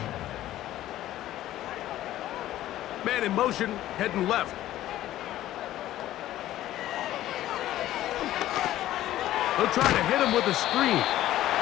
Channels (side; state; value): right; quieter; 13.9 dB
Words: Man in motion, heading left. They'll try to hit him with a screen.